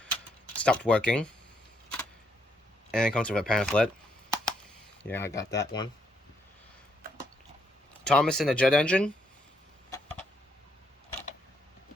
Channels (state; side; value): normal; both; correlation 0.74